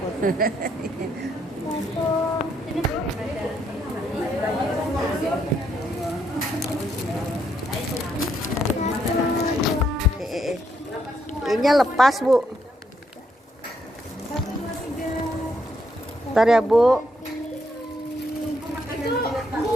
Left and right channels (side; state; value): both; normal; correlation 0.75